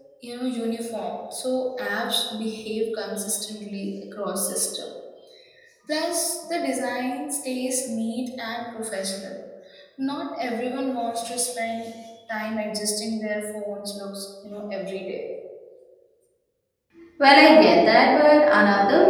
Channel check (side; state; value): both; identical; correlation 1.00